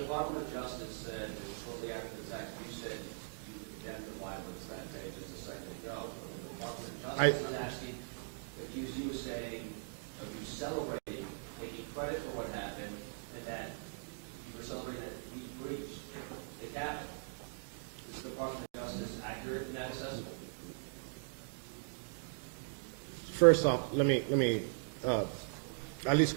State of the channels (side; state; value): left; silent; digital silence